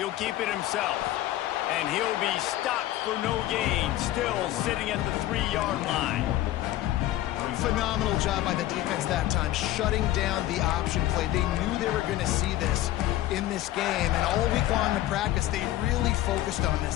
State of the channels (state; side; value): quieter; right; 14.7 dB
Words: keep it himself. And he'll be stopped for no gain, still sitting at the 3-yard line. Phenomenal job by the defense that time, shutting down the option play. They knew they were going to see this in this game, and all week long in practice, they really focused on